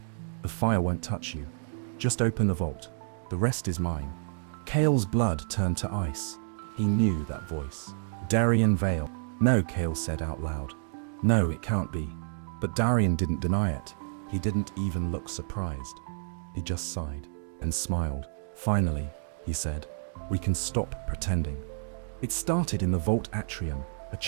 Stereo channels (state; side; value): silent; left; digital silence